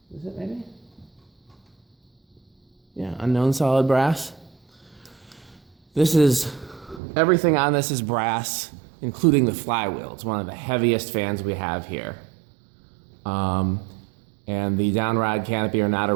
Is it maybe? Yeah, unknown solid brass. This is, everything on this is brass, including the flywheel. It's one of the heaviest fans we have here. And the downrod canopy are not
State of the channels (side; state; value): left; drops out; at 7.0 s